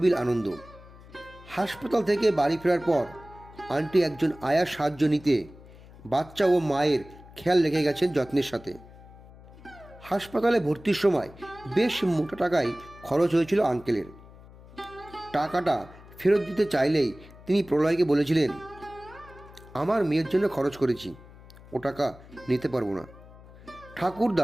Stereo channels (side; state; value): left; noise; hum, 20 dB below the sound